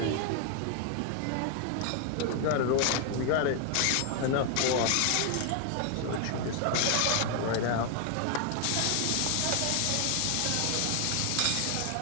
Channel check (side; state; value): both; different; correlation 0.00